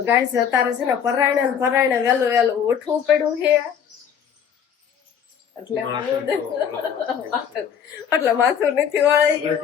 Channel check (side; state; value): right; quieter; 8.0 dB